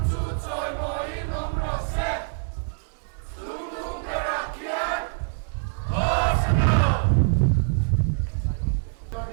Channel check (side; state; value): left; silent; digital silence